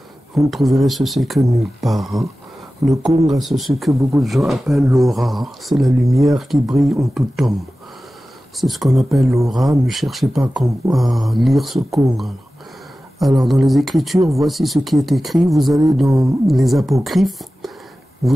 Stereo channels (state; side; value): normal; both; correlation 0.95